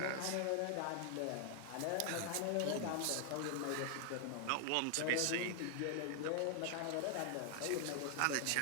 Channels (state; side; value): different; both; correlation 0.00